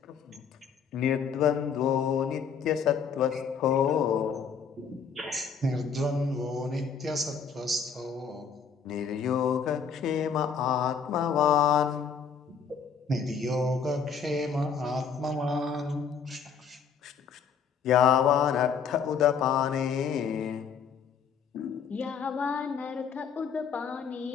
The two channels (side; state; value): right; quieter; 6.4 dB